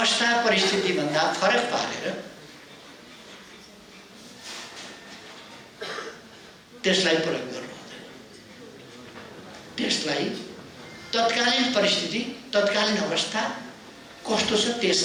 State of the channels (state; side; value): identical; both; correlation 1.00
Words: परिस्थितिभन्दा फरक पारेर त्यसलाई प्रयोग गर्नु हुँदैन। त्यसलाई तत्कालीन परिस्थिति, तत्कालीन अवस्था कस्तो छ त्यस